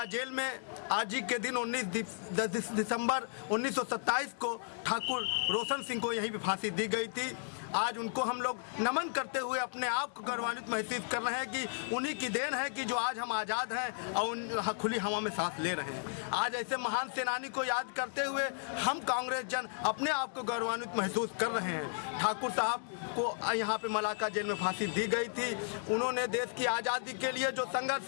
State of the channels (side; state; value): right; silent; digital silence